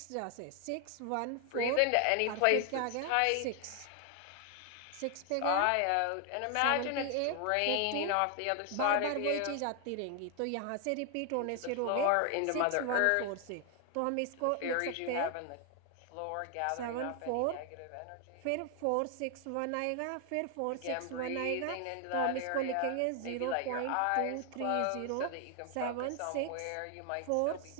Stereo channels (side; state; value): both; different; correlation 0.00